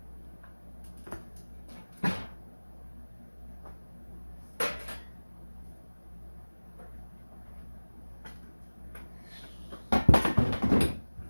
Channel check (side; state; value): both; inverted; correlation -1.00